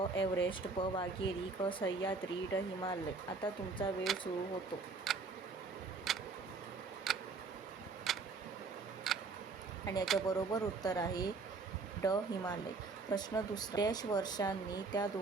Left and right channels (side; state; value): left; quieter; 4.3 dB